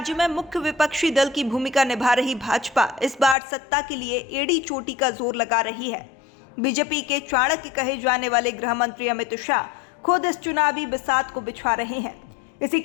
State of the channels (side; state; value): right; drops out; at 3.4 s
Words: में मुख्य विपक्षी दल की भूमिका निभा रही भाजपा इस बार सत्ता के लिए एड़ी चोटी का जोर लगा रही है। बीजेपी के चाणक्य कहे जाने वाले गृह मंत्री अमित शाह खुद इस चुनावी बिसात को बिछा रहे हैं। इसी